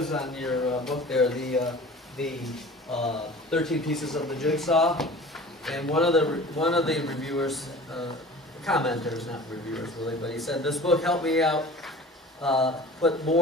on your book there, the 13 Pieces of the Jigsaw, and one of the reviewers, commenters, not reviewers really, but he said, this book helped me out, put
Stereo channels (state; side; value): normal; both; correlation 0.41